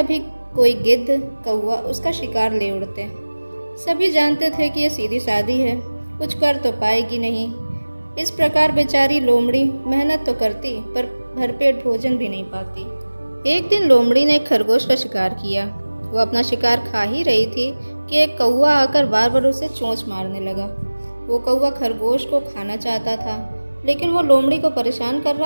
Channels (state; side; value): inverted; both; correlation -1.00